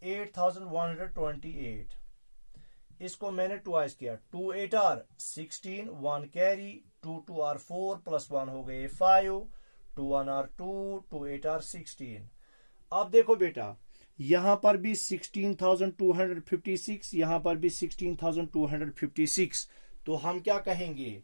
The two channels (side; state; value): both; inverted; correlation -1.00